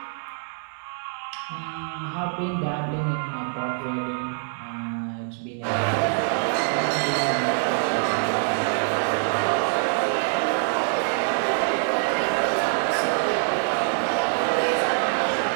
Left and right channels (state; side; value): silent; left; 62 dB below the other